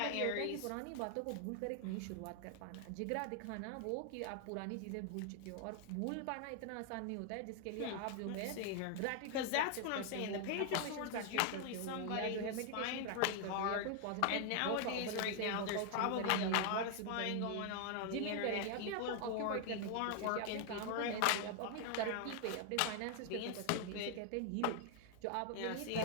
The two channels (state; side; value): different; both; correlation 0.00